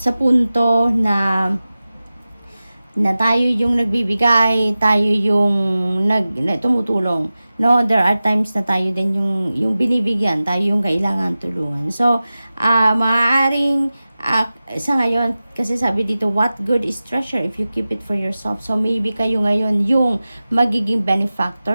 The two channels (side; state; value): both; inverted; correlation -0.96